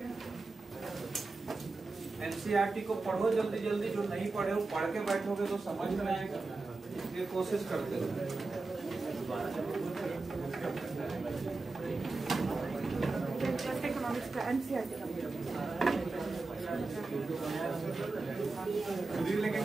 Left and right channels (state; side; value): quieter; left; 3.6 dB